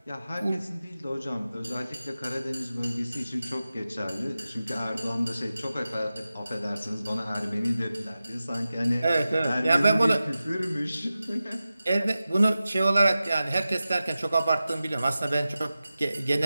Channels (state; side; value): inverted; both; correlation -0.94